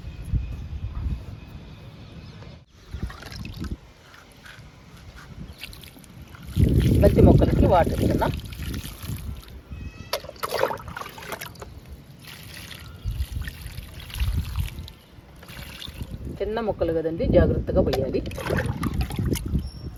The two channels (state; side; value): identical; both; correlation 1.00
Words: బంతి మొక్కలకి వాటర్ ఇస్తున్నా. చిన్న మొక్కలు కదండి, జాగ్రత్తగా పోయాలి.